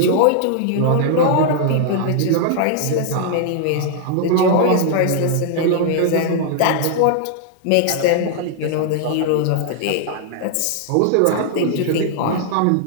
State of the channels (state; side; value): different; both; correlation -0.01